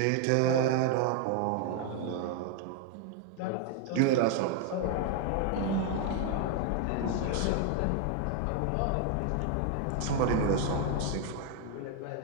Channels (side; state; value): both; different; correlation 0.00